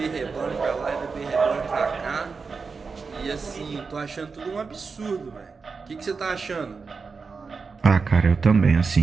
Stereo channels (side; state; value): left; quieter; 4.9 dB